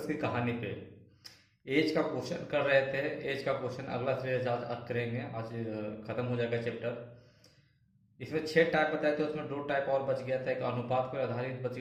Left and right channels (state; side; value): identical; both; correlation 1.00